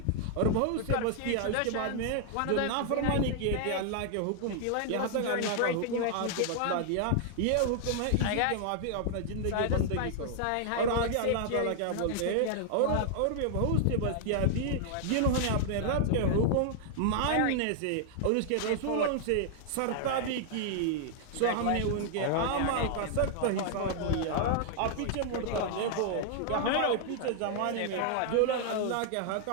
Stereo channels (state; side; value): different; both; correlation 0.00